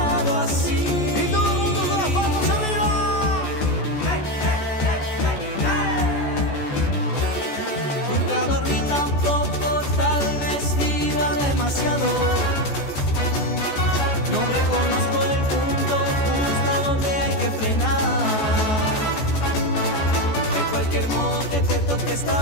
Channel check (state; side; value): late; right; 14 ms